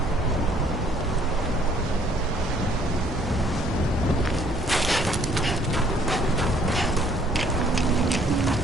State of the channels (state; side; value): normal; both; correlation 0.62